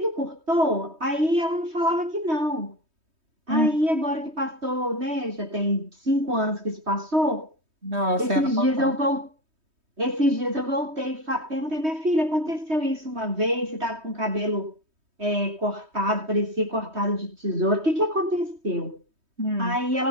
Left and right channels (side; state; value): left; late; 3.2 ms